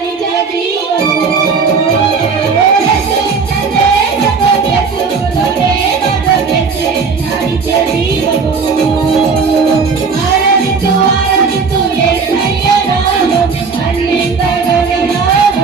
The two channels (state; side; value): quieter; left; 5.1 dB